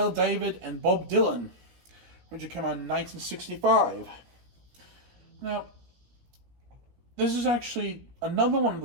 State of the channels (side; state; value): left; late; 17 ms